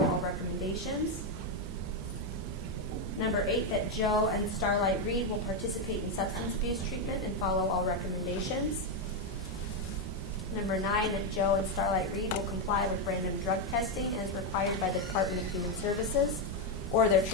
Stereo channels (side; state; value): both; normal; correlation 0.04